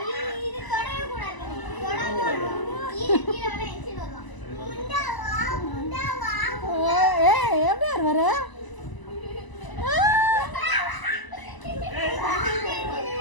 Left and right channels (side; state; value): right; late; 1.0 ms